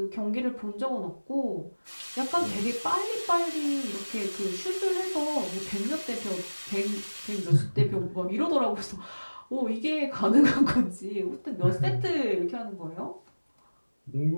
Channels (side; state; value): both; inverted; correlation -1.00